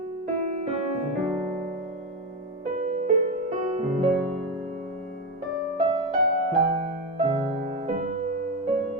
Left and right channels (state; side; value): normal; both; correlation 0.14